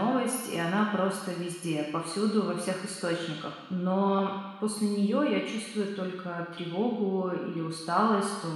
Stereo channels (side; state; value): both; identical; correlation 1.00